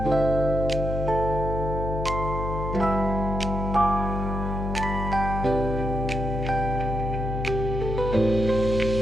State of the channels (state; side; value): noise; left; hum, 3 dB below the sound